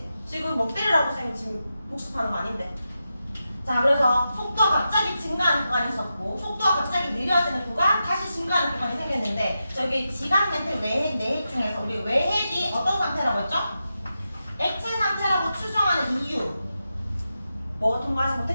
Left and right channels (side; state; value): both; inverted; correlation -0.89